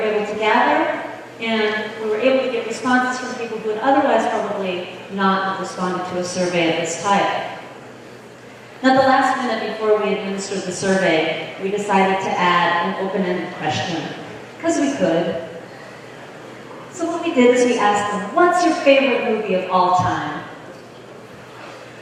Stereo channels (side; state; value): both; identical; correlation 1.00